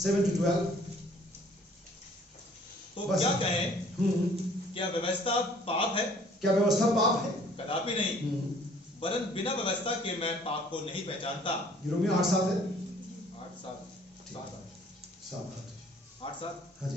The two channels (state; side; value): normal; both; correlation 0.56